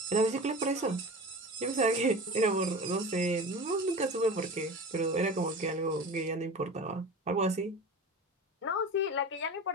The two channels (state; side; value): normal; both; correlation 0.32